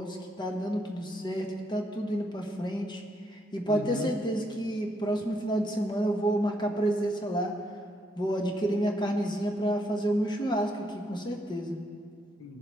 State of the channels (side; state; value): both; normal; correlation 0.76